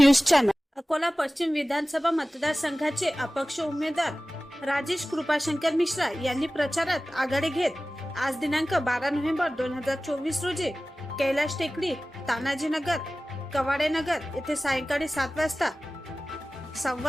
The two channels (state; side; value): normal; both; correlation 0.97